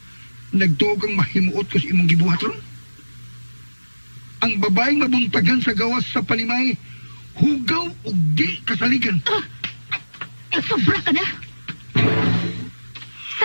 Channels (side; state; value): both; inverted; correlation -1.00